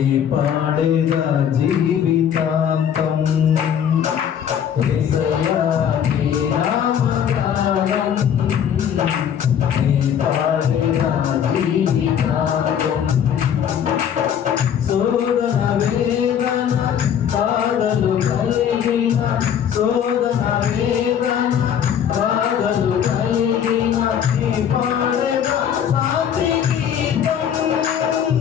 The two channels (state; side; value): quieter; right; 8.8 dB